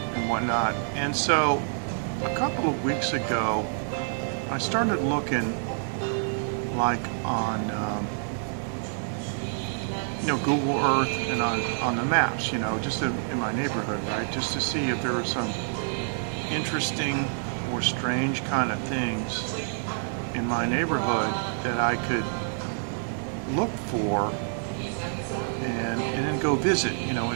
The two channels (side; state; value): left; silent; digital silence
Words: and whatnot. And so, a couple of weeks ago, I started looking, like on Google Earth and on the maps, just in my neighborhood, right? Just to see if there were some interesting or strange kind of things in my neighborhood that I could look for and then go visit, in